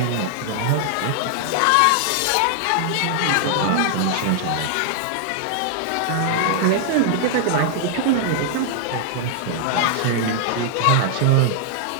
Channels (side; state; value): both; different; correlation 0.00